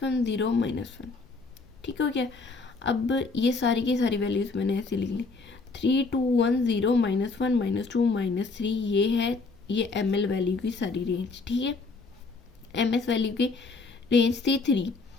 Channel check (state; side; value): quieter; right; 4.0 dB